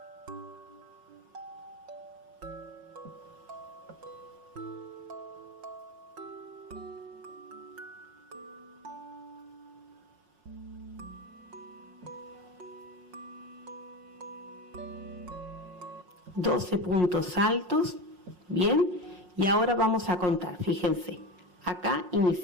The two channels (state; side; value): late; left; 5.5 ms